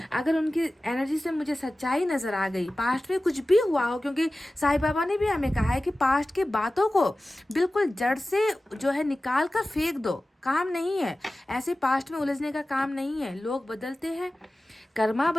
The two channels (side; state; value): both; normal; correlation 0.96